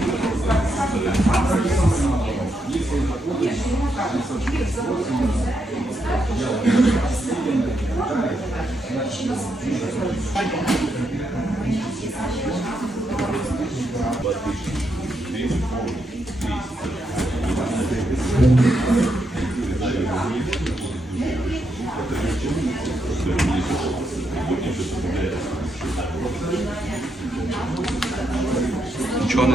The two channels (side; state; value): both; normal; correlation 0.81